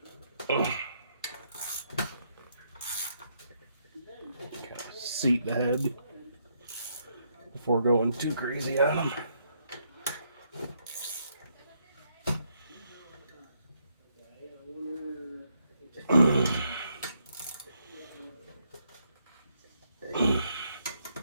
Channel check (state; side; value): inverted; both; correlation -0.75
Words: Seat the head before going too crazy on them.